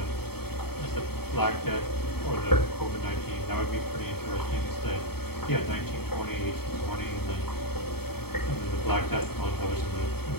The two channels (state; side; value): late; right; 0.96 ms